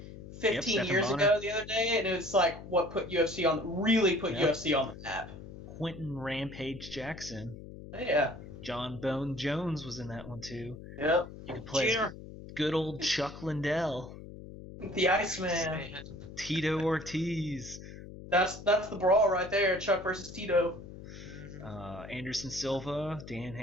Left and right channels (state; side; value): noise; left; hum, 13 dB below the sound